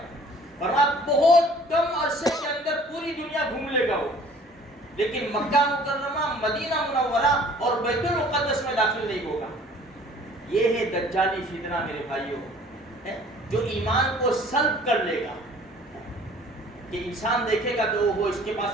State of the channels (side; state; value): both; normal; correlation 0.52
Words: فرمایا بہت کم عرصے کے اندر پوری دنیا گھوم لے گا وہ، لیکن مکہ مکرمہ، مدینہ منورہ اور بیت المقدس میں داخل نہیں ہوگا۔ یہ ہے دجالی فتنہ میرے بھائیوں، جو ایمان کو سلب کر لے گا، کہ انسان دیکھے گا تو وہ اس کے